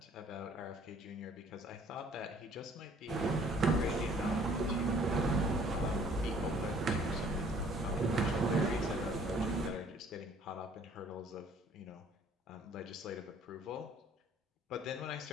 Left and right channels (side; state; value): both; normal; correlation 0.57